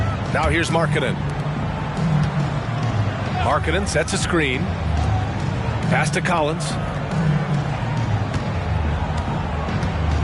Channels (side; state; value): both; identical; correlation 1.00